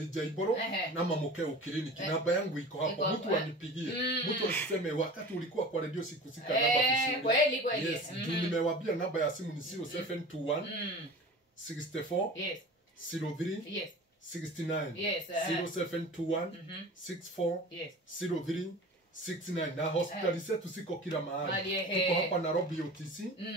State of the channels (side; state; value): both; normal; correlation 0.38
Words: Jaiburu na Mukeo Clinic. Namba yangu iko hapo. Mtu anipigie. Mtu asiseme wakati ulikuwa kwa radio sikusika namba vizuri. Kweli. Nimewaambia namba ya simu ni 0721 64 03 69 0721 64 03 69 na hospitali zetu siko kila mahali. Tuko hapa Nairobi UTC,